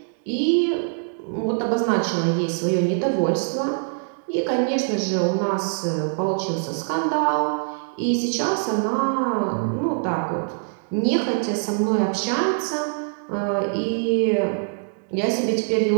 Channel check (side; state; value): left; silent; digital silence